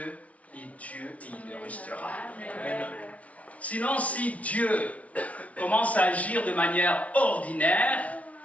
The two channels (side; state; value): right; late; 0.066 ms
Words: est Dieu et il le restera. Amen. Sinon, si Dieu commence à agir de manière ordinaire,